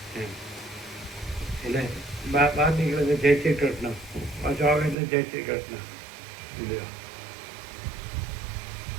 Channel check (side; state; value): left; drops out; at 5.0 s